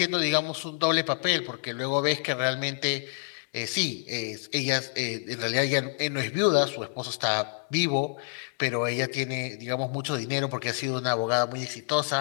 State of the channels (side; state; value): right; silent; digital silence